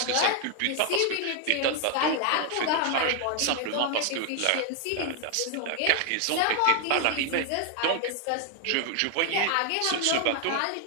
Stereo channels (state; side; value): different; both; correlation 0.00